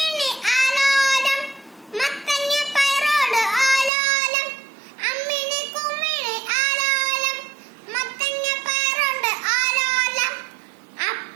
ആലോലം, മത്തങ്ങ പയറോട് ആലോലം, അമ്മിണി കുമ്മിണി ആലോലം, മത്തങ്ങ പയറോട് ആലോലം,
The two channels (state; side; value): drops out; left; at 3.9 s